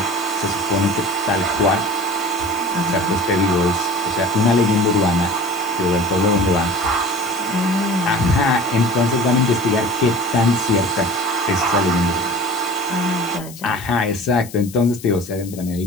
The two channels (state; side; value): noise; left; hiss, 17 dB below the sound